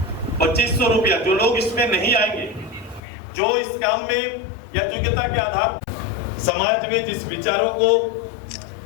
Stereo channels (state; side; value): drops out; right; at 3.0 s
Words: 2500 रुपया, जो लोग इसमें नहीं आएंगे, जो इस काम में या योग्यता के आधार समाज में जिस विचारों को